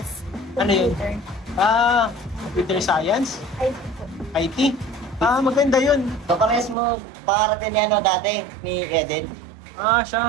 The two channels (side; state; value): left; drops out; at 6.8 s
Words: Ano yun? Computer Science? IT po. IT? Maganda yun. So, parehas mo pakarating ni dati, ni Eden.